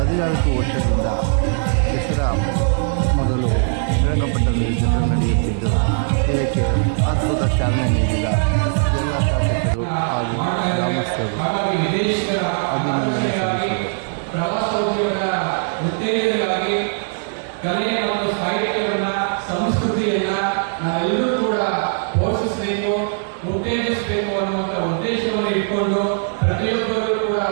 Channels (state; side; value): silent; left; 66 dB below the other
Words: ವರ್ಷದಿಂದ ದಸರಾ ಮೊದಲು ಶ್ರೀರಂಗಪಟ್ಟಣದಲ್ಲಿ ದಸರಾ ನಡೆಯುತ್ತಿದ್ದು, ಇದಕ್ಕೆ ಅದ್ಭುತ ಚಾಲನೆ ನೀಡಿದ ಎಲ್ಲ ಶಾಸಕರು ಹಾಗೂ ಗ್ರಾಮಸ್ಥರು ಅಭಿನಂದನೆ ಸಲ್ಲಿಸಿದರು. ಪ್ರವಾಸೋದ್ಯಮದ ಉತ್ತೇಜನವಾಗಿ ಕಲೆ ಮತ್ತು ಸಾಹಿತ್ಯವನ್ನು, ಸಂಸ್ಕೃತಿಯನ್ನು ನಾವೆಲ್ಲರೂ ಕೂಡ ಪೋಷಿಸಬೇಕು, ಉತ್ತೇಜಿಸಬೇಕು ಅನ್ನುವಂಥ ಉದ್ದೇಶವನ್ನು ಇಟ್ಕೊಂಡು ಪ್ರತಿಯೊಬ್ಬರೂ ಕೂಡ